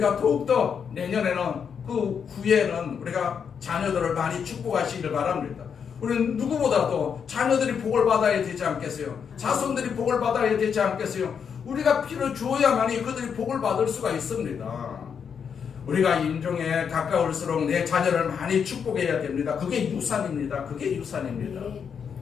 더욱더 내년에는 그 후에는 우리가 자녀들을 많이 축복하시길 바랍니다. 우리는 누구보다도 자녀들이 복을 받아야 되지 않겠어요? 자손들이 복을 받아야 되지 않겠어요? 우리가 피를 주어야만이 그들이 복을 받을 수가 있습니다. 우리가 임종에 가까울수록 내 자녀를 많이 축복해야 됩니다. 그게 유산입니다. 그게 유산입니다.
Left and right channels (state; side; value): quieter; right; 7.0 dB